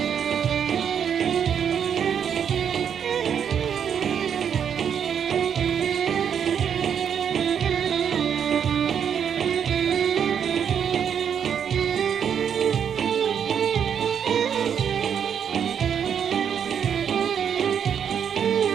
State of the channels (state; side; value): quieter; left; 8.0 dB